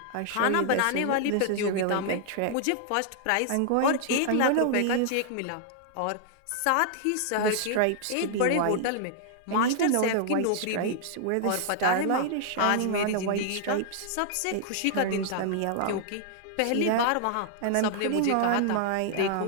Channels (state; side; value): different; both; correlation -0.01